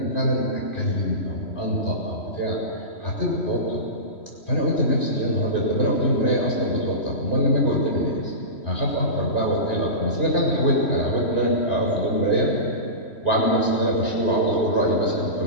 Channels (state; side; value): late; right; 3.1 ms